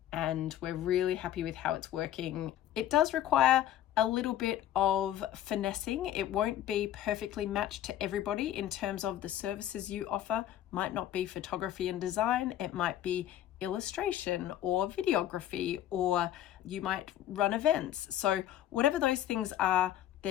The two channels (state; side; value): quieter; right; 11.9 dB